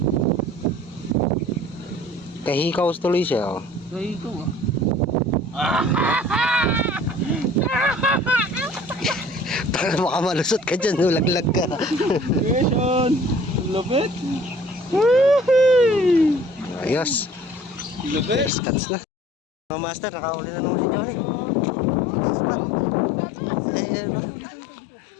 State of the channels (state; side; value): drops out; right; at 18.5 s